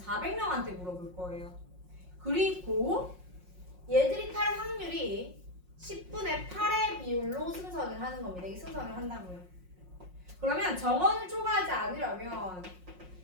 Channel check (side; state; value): left; late; 5.5 ms